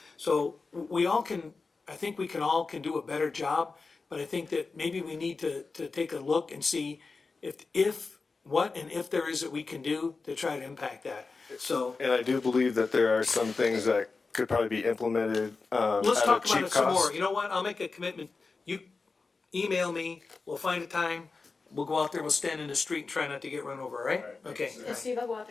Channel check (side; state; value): right; quieter; 4.2 dB